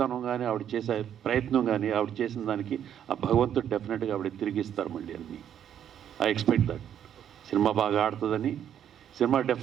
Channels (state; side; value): quieter; left; 9.6 dB